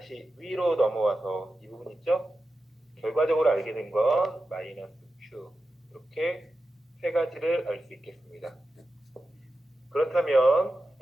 위로 넘어와서 이 부분 있죠? 결과적으로 알게 된 건 마이너스 Q, 이렇게 세 가지를 알 수 있겠습니다. 그렇다면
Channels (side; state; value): both; normal; correlation 0.91